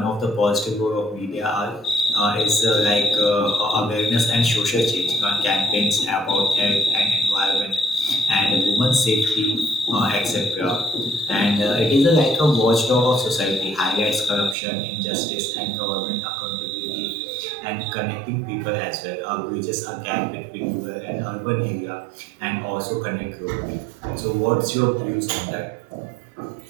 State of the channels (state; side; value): drops out; left; at 14.6 s